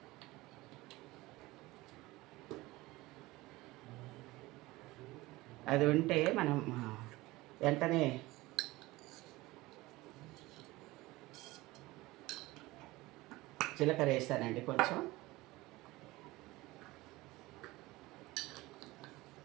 అది ఉంటే మనం వెంటనే జీలకర్ర వేసానండి, కొంచెం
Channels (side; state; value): left; quieter; 20.0 dB